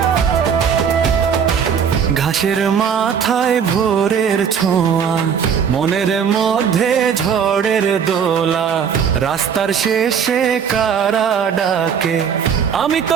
ঘাসের মাথায় ভোরের ছোঁয়া, মনের মধ্যে ঝড়ের দোলা, রাস্তার শেষে কারা ডাকে, আমি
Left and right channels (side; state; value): left; quieter; 7.3 dB